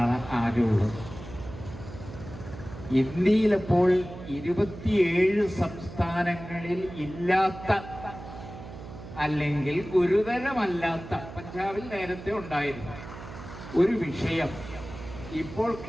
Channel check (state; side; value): noise; right; hum, 13 dB below the sound